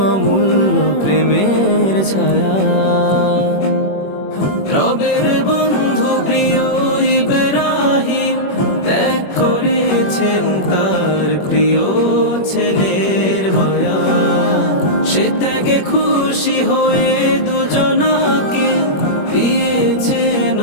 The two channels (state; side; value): late; right; 21 ms